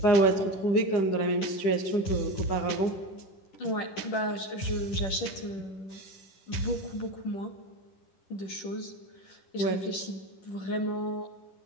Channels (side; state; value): right; late; 10 ms